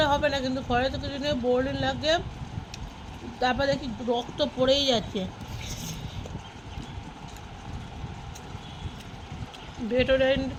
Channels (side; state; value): both; identical; correlation 1.00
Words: হবে না, কিন্তু ঘরে তো কিছু নেই, বোরোলিন লাগিয়ে তারপর দেখি রক্ত পড়েই যাচ্ছে। ভেটোরাইন